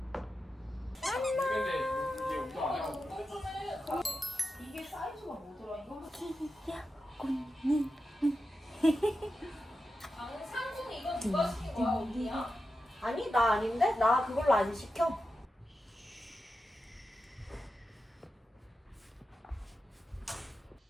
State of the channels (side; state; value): both; normal; correlation 0.90